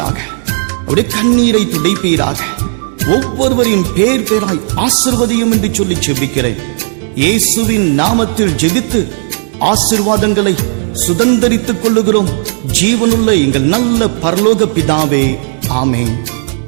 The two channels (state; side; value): silent; left; 65 dB below the other